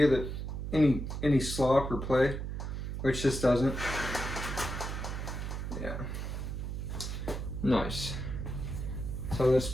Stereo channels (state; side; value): noise; right; hum, 4 dB below the sound